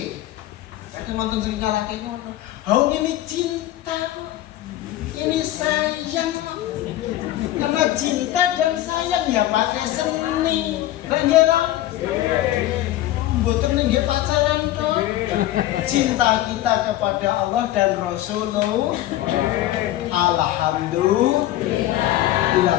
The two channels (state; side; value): quieter; right; 14.5 dB